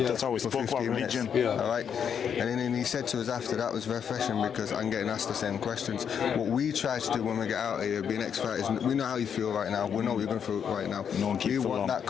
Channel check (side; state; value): right; quieter; 7.7 dB